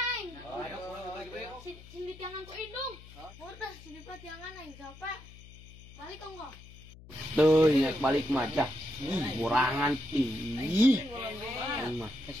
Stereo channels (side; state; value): left; noise; hum, 19 dB below the sound